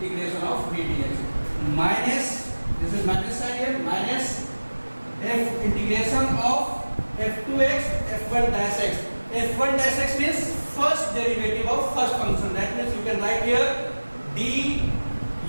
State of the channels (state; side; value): inverted; both; correlation -1.00